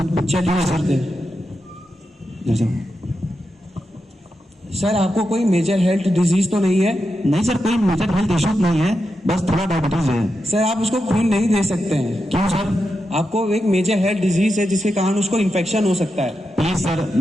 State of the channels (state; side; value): normal; both; correlation 0.87